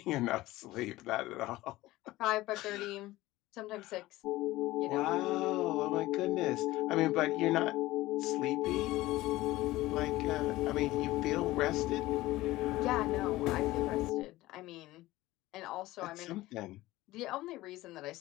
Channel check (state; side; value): quieter; right; 17.7 dB